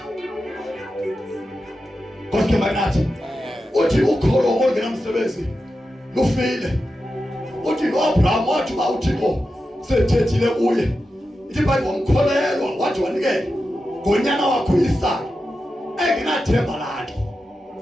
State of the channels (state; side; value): normal; both; correlation 0.90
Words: Koske magnathi uthi ukholo olungenamsebenzi lufile. Uthi noAbraham wathi uba uThixo sethethile kuye ithi bayi wamkholelwa wathi wanikela ngonyana wakho Isaka engenathemba lakhe.